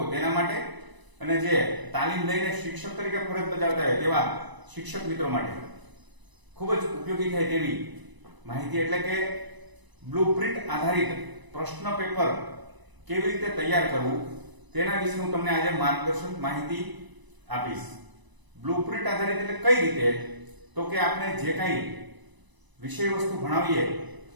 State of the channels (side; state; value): left; late; 1.0 ms